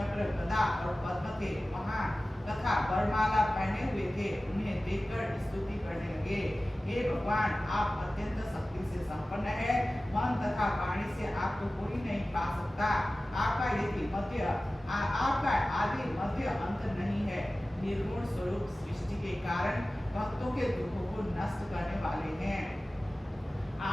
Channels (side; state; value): both; normal; correlation 0.96